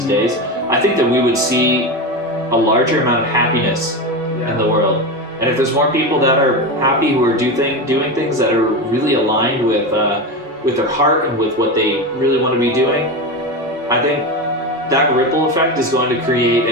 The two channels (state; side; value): normal; both; correlation 0.19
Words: days, I think that we would see a larger amount of happiness in the world. And if there's more people that are happy, who are doing things that are really aligned with their heart and with what they really want to be doing, I think that ripple effect is going to